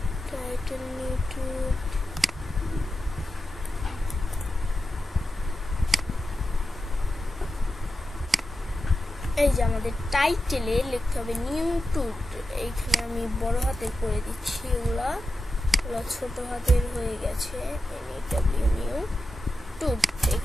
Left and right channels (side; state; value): both; normal; correlation 0.91